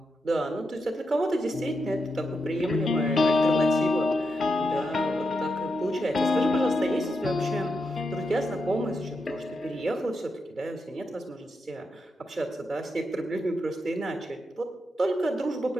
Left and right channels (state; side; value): normal; both; correlation 0.84